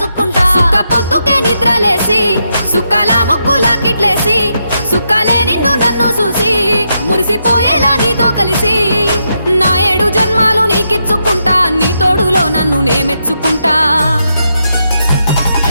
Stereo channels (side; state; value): both; inverted; correlation -0.82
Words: సుఖ పొద్దుకే నిద్రలేసి సుఖాల ముక్కులా కిట్లేసి సుఖాలే నిన్ను నన్ను చూసి మురిసిపోయేలా నీతో కలిసి నా 7 జన్మాలు నీకిచ్చుకుంటా నీ తోడులో నన్ను నే మెచ్చుకుంటా